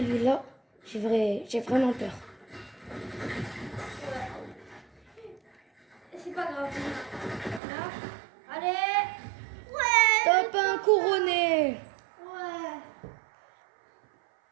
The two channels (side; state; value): left; drops out; at 7.6 s